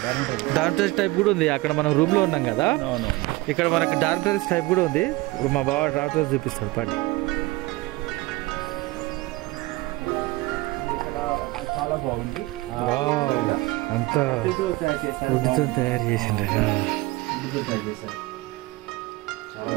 టైప్ కూడా ఉంది. అక్కడ మనం రూమ్ లో ఉన్నాం కదా, ఇక్కడ మనకి డార్మిటరీస్ టైప్ కూడా ఉంది. ఇప్పుడు మా బావ డార్మిటరీస్ చూపిస్తాడు పాటి. చాలా బాగుంది. అంతా ఉద్దుతో తయారు చేసిండ్రు. చాలా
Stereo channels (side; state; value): left; quieter; 21.3 dB